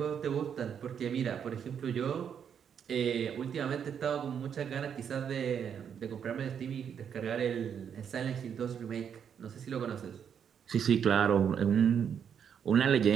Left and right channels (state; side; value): quieter; left; 7.9 dB